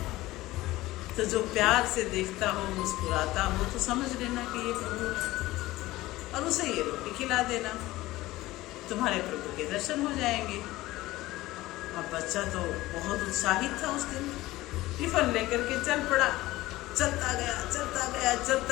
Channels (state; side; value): quieter; right; 17.8 dB